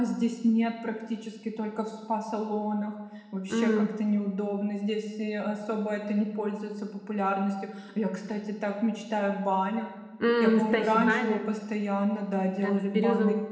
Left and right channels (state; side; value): identical; both; correlation 1.00